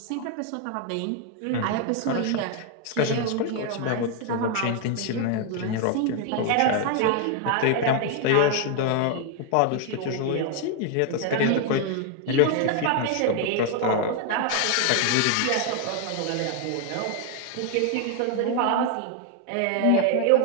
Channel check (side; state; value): both; different; correlation 0.00